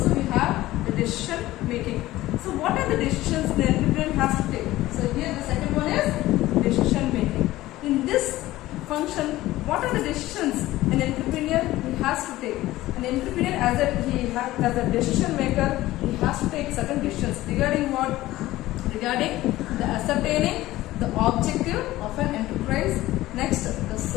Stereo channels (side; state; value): right; quieter; 16.6 dB